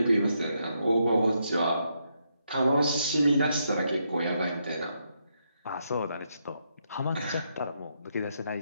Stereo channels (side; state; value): both; inverted; correlation -0.79